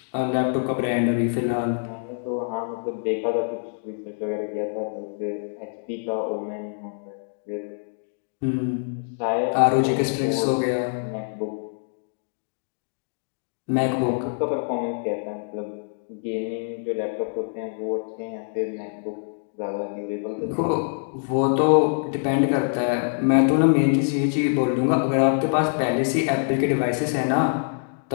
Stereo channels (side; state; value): right; silent; digital silence